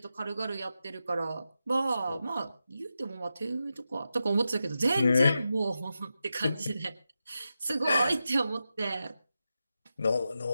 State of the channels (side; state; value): both; inverted; correlation -0.89